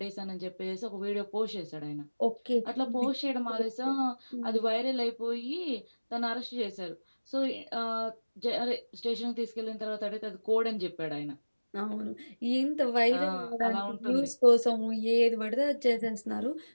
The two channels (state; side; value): inverted; both; correlation -1.00